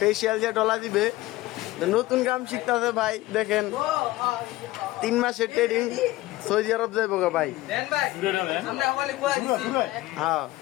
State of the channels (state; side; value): quieter; right; 17.9 dB